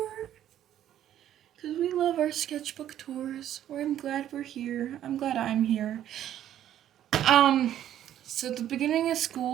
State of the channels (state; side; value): quieter; left; 11.4 dB